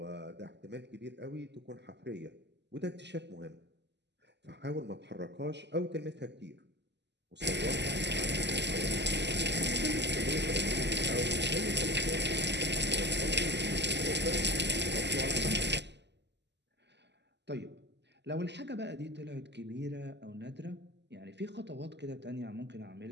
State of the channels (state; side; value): late; left; 0.50 ms